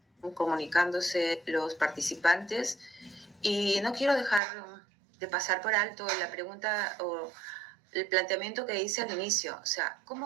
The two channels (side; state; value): left; drops out; at 4.4 s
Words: comunicándose los participantes y no quiero dejar de pasar por alto la pregunta o el planteamiento que hice al inicio. O sea,